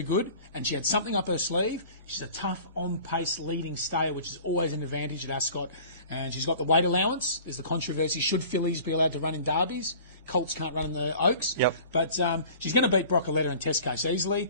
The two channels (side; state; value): both; inverted; correlation -0.45